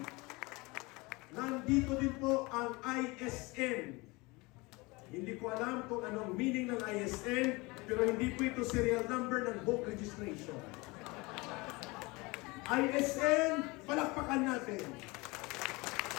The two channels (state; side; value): quieter; right; 24.6 dB